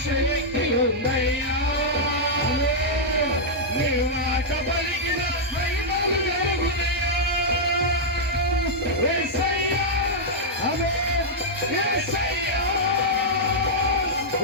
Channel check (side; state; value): both; normal; correlation -0.07